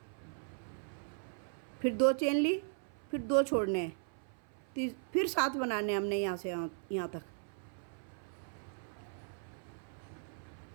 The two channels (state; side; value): silent; left; 53 dB below the other